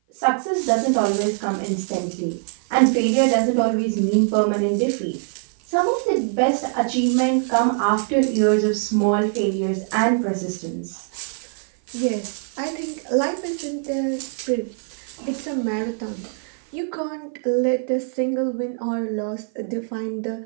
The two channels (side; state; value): left; silent; 55 dB below the other